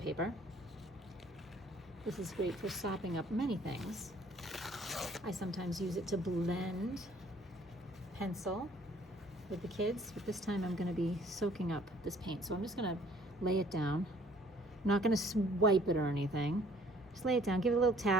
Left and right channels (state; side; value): normal; both; correlation 0.58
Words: This is great for sopping up many things. I sometimes use it to blend pencil with the kids, but this time I'm going to be soaking up this paint. So I'm just going to lay it down. I'm not going to swipe it or anything. Just lay it down, give it a little